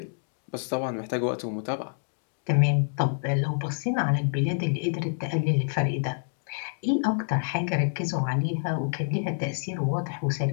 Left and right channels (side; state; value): right; silent; digital silence